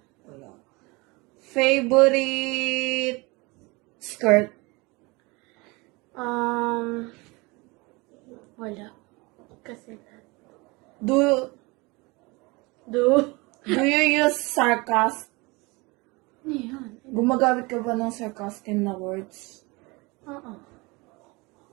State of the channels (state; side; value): quieter; left; 25.4 dB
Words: Favorite skirt? Wala. Kasi Do do. you use sarcasm? Ano yun? Gumagamit ka ba ng sarcastic na words? Oo.